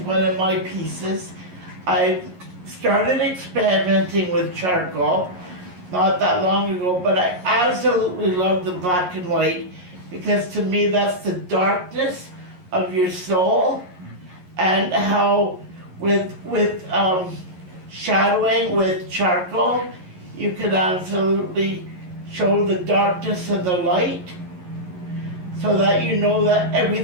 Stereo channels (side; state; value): left; late; 11 ms